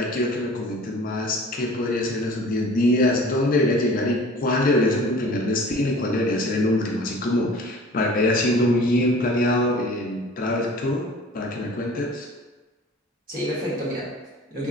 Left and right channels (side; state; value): both; normal; correlation 0.45